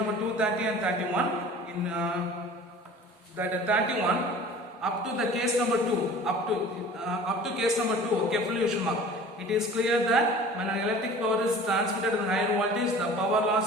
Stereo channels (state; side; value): normal; both; correlation 0.43